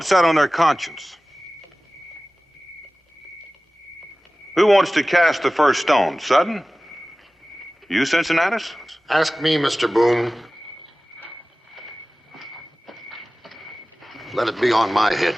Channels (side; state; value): both; normal; correlation 0.97